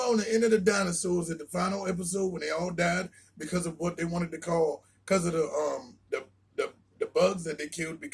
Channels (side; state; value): both; identical; correlation 1.00